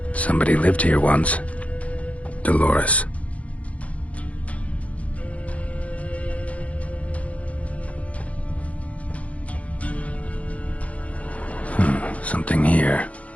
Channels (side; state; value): right; late; 0.065 ms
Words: Somebody lived here once. Dolores. Something here.